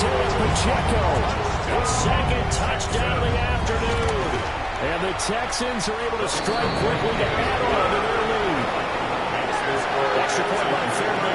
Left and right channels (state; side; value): identical; both; correlation 1.00